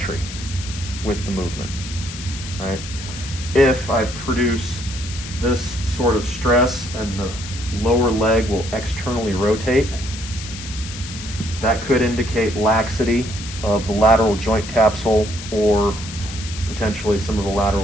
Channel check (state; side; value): noise; left; hiss, 11 dB below the sound